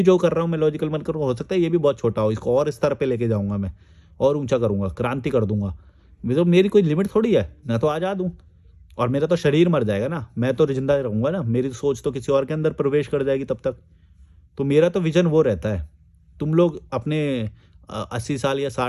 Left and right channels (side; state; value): both; identical; correlation 1.00